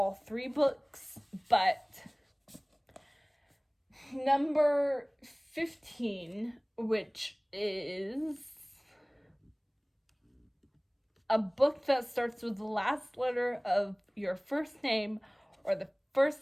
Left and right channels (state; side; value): identical; both; correlation 1.00